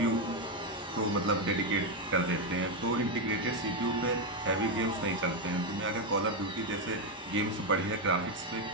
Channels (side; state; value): both; normal; correlation 0.06